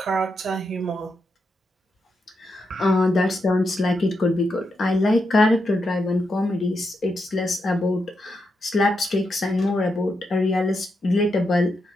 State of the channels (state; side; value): normal; both; correlation 0.84